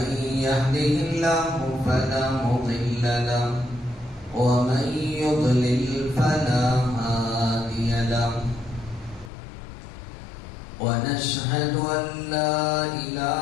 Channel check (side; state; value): right; drops out; at 9.3 s